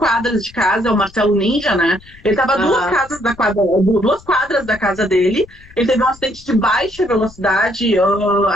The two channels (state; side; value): noise; left; rumble, 24 dB below the sound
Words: de casa, é o Marcelo Ninja, né? Ele estava a 2 quadras da casa dele, ele teve um acidente de baixa velocidade,